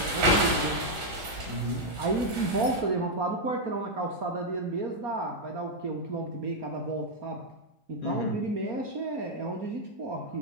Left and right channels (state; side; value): late; left; 4.3 ms